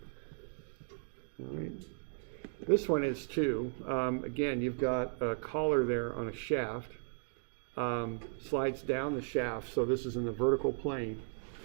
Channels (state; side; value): silent; left; digital silence